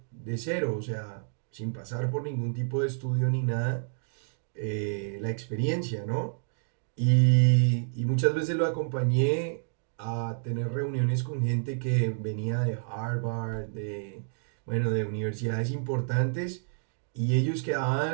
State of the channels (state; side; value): silent; left; digital silence